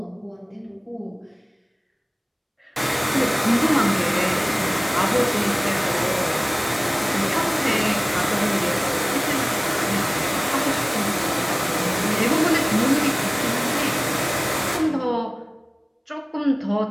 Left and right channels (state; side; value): identical; both; correlation 1.00